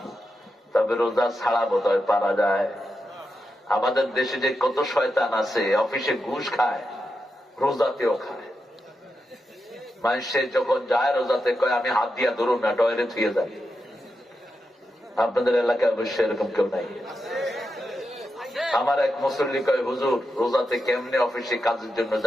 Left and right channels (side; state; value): both; normal; correlation 0.87